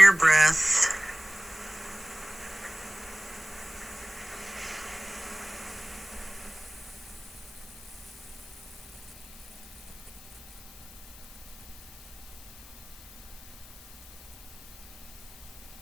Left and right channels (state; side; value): noise; left; hiss, 18 dB below the sound